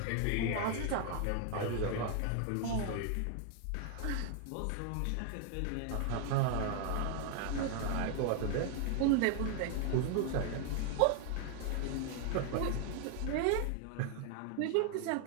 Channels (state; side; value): different; both; correlation 0.00